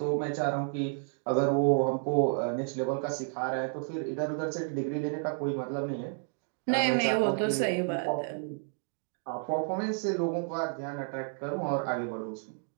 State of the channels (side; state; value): left; silent; 57 dB below the other